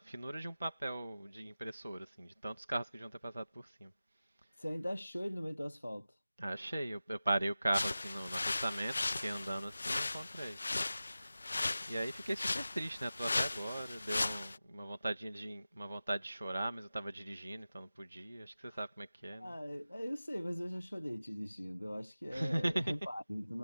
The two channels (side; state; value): both; inverted; correlation -0.95